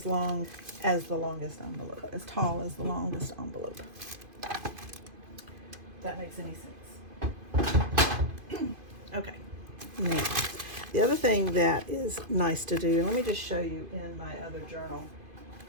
long as the longest envelope, as tall as the longest envelope. If that makes any sense. Okay. Now, the other thing that is nice to do, and let me just show you in my other journal.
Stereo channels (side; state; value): left; late; 2.5 ms